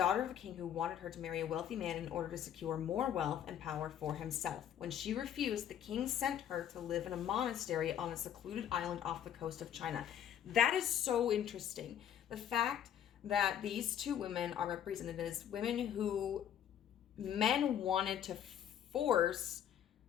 of a king who wanted her to marry a wealthy man in order to secure more wealth and power for himself. When she refused, the king sent her to live in a monastery on a secluded island off the coast of China. That is so interesting. The fact that these two women are represented as women who men wanted to force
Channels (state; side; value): quieter; right; 9.9 dB